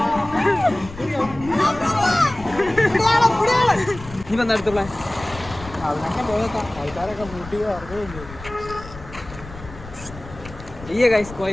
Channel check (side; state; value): left; noise; rumble, 15 dB below the sound